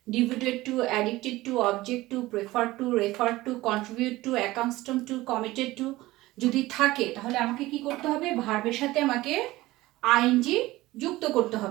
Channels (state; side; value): quieter; left; 18.3 dB